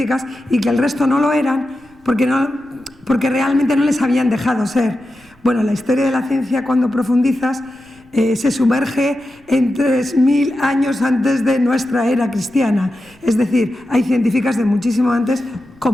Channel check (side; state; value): right; noise; rumble, 30 dB below the sound